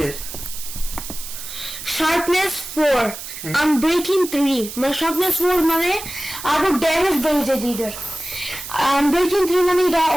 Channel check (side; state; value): right; noise; hiss, 10 dB below the sound